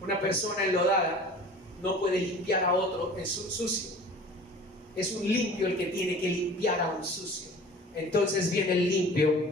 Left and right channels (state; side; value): normal; both; correlation 0.43